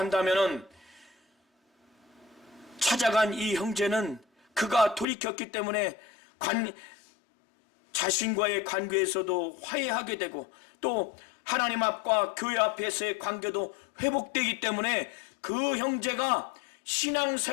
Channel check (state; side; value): drops out; right; at 5.1 s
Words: 찾아간 이 형제는 그가 돌이켰기 때문에 자신과의 관계에서도 화해하게 되고 또 하나님 앞과 교회 앞에서의 관계도 회복되기 때문에 그 형제가